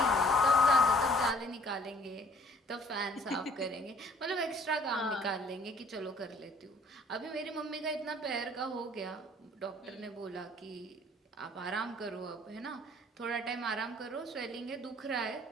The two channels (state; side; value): normal; both; correlation 0.57